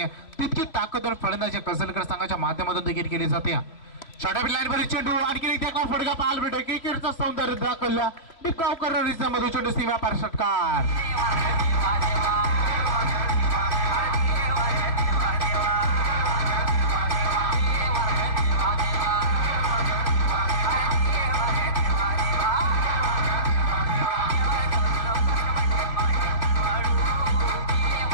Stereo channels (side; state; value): right; late; 2.9 ms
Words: तितकी ताकदवर फलंदाजी कसलगड संघाच्या माध्यमातून देखील केली जाते. छोट्या लाईनवरील चेंडू आणखी एक देखला फटका पाहायला भेटतो. क्रिकेटचा सौंदर्य दाखवला डिपकाव करणारीचा मधू चेंडू सीमा पार षटकार.